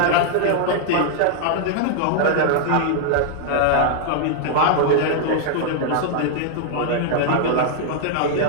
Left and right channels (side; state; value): both; different; correlation -0.01